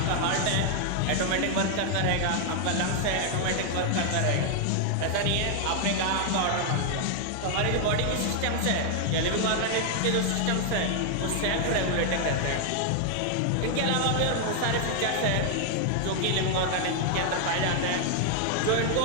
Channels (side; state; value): both; different; correlation 0.00